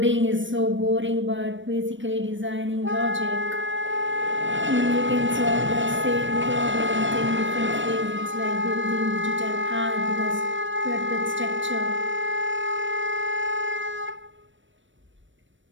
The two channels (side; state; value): left; late; 0.56 ms